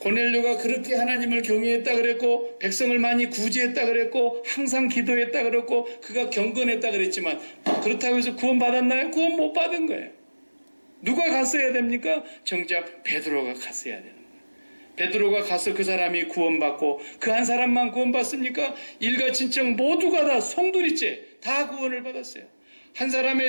그렇게 하나님을 경외했다 그랬고, 백성을 많이 구제했다 그랬고, 항상 기도했다 그랬고, 그가 경건했다 그랬지만, 그렇다고 해서 구원 받았나요? 구원 못 받은 거예요. 누가 갔어야 됩니까? 정작 베드로가 갔어야 되는 거예요. 베드로가 가서 그 사람이 구원받고, 그 한 사람만 구원받습니까? 일가 친척 모두가 다 송두리째 다 구원을 받았어요. 한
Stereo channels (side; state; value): both; inverted; correlation -1.00